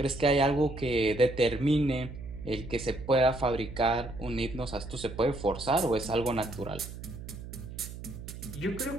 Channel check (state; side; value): noise; right; hum, 11 dB below the sound